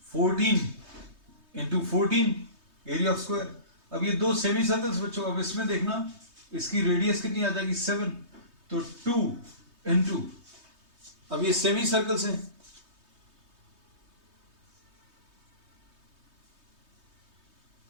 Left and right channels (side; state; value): left; late; 3.2 ms